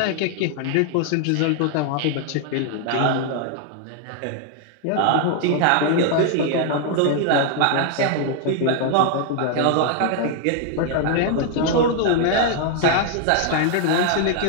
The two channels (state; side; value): different; both; correlation 0.00